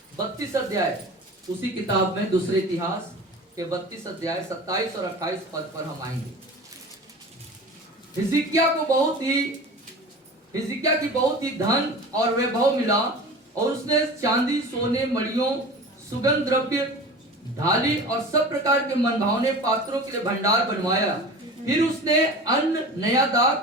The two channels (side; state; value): both; normal; correlation 0.36